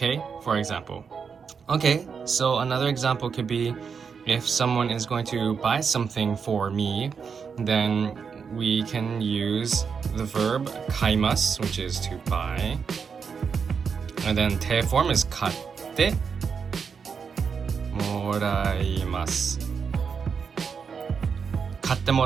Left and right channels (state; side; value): quieter; left; 6.1 dB